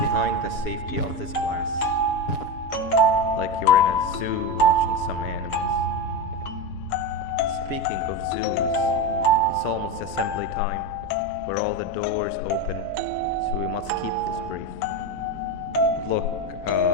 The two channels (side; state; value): right; late; 7.0 ms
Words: the safety of this glass. Like you're in a zoo watching some animals. Speaking of zoos, it's almost assembly time, where all the doors open, so we must keep this brief. Look,